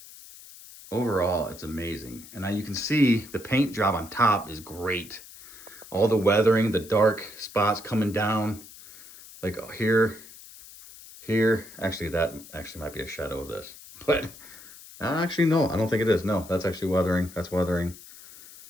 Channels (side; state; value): left; noise; hiss, 18 dB below the sound